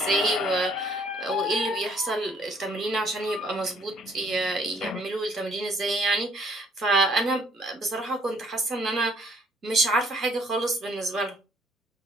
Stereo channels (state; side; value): normal; both; correlation 0.63